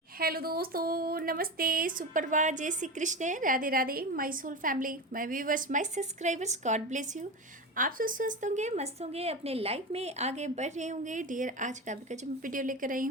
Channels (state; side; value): normal; both; correlation 0.23